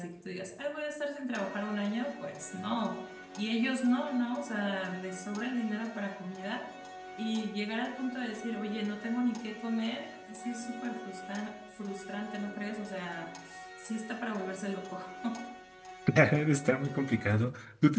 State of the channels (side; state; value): both; identical; correlation 1.00